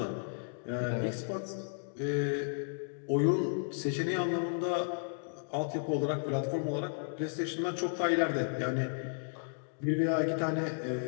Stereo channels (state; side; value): silent; right; digital silence